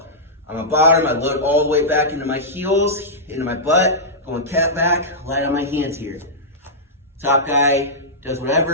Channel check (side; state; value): both; normal; correlation -0.13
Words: I'm on bottom, I load all the way back into my heels, into my butt, going cat back, light on my hands here. Top guy does